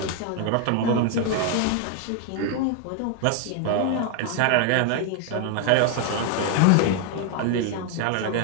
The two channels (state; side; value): different; both; correlation 0.01